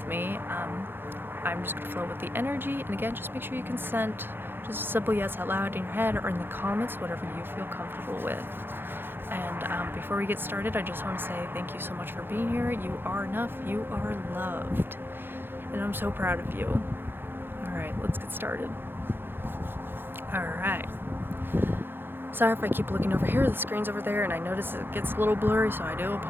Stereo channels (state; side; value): late; left; 0.10 ms